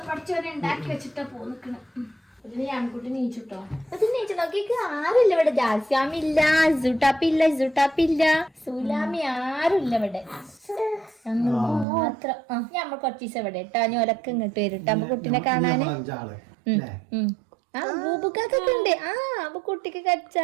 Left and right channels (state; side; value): drops out; left; at 11.9 s